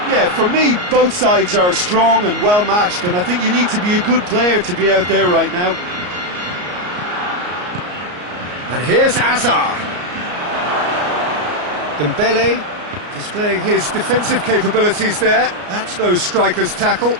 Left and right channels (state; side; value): late; left; 34 ms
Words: Yeah, for me, both sides are strong and well matched, and I think you need to be a good player to be out there right now. And here's Hazard. Dembele displaying his defensive capabilities there. That's no striker's tackle.